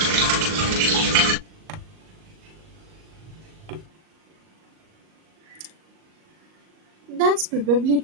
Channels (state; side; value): late; left; 38 ms